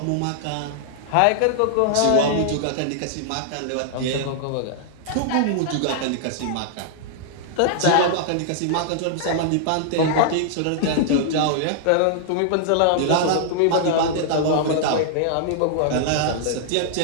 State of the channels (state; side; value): different; both; correlation -0.01